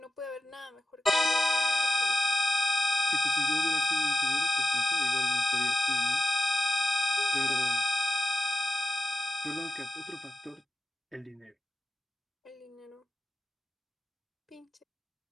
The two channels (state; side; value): normal; both; correlation 0.91